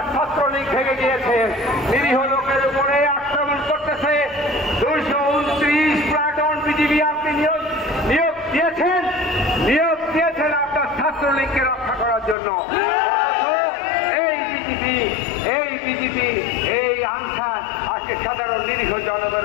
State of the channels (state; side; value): drops out; right; at 12.4 s